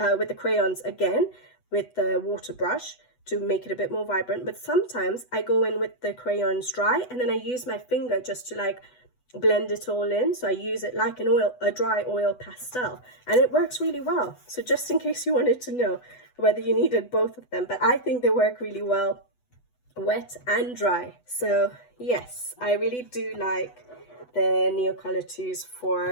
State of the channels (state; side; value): late; right; 8.0 ms